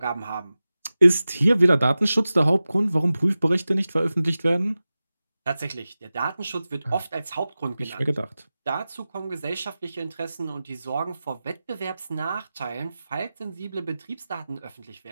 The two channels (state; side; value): inverted; both; correlation -0.96